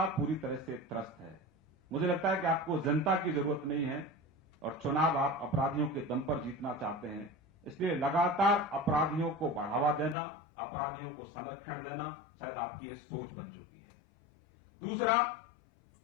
पूरी तरह से त्रस्त है। मुझे लगता है कि आपको जनता की जरूरत नहीं है, और चुनाव आप अपराधियों के दम पर जीतना चाहते हैं। इसलिए लगातार अपराधियों को बढ़ावा देना, अपराधियों को संरक्षण देना शायद आपकी यह सोच बन चुकी है। दूसरा,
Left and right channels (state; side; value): drops out; right; at 10.2 s